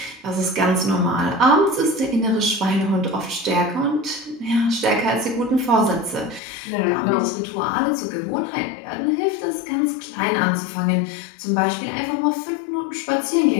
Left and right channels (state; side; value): drops out; right; at 6.4 s